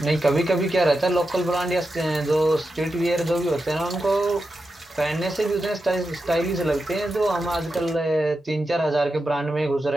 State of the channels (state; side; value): normal; both; correlation 0.89